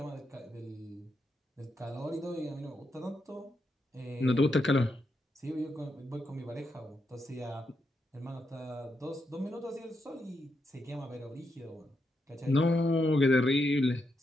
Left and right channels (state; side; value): normal; both; correlation 0.83